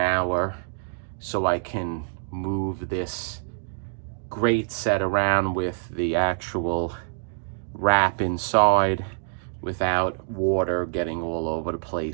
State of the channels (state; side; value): silent; left; digital silence